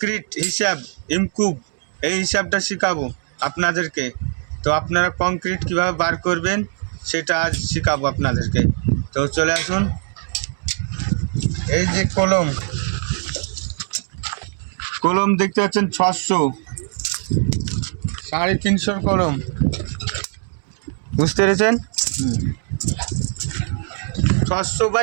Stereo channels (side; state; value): left; silent; digital silence